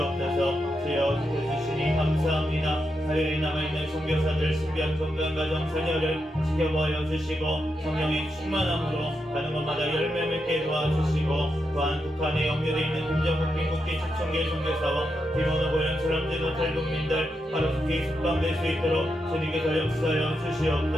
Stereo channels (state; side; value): normal; both; correlation 0.84